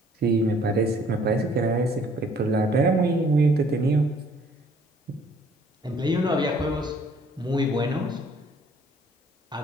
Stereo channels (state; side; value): normal; both; correlation 0.59